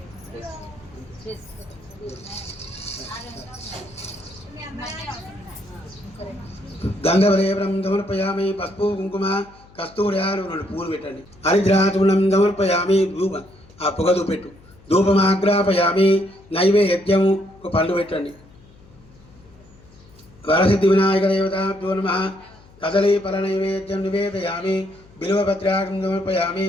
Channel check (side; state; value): left; noise; hum, 25 dB below the sound